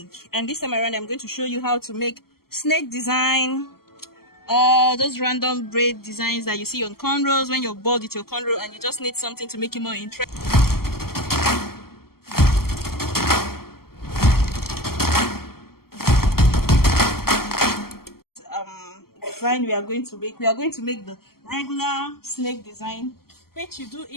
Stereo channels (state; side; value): late; right; 0.94 ms